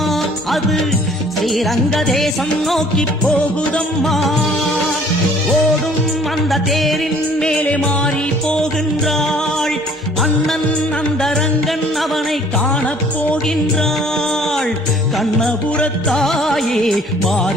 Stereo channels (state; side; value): normal; both; correlation 0.56